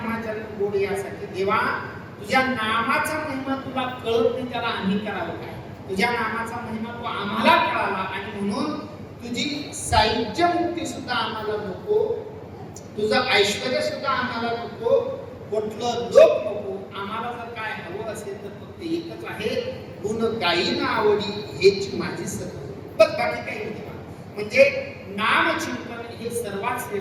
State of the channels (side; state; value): both; identical; correlation 1.00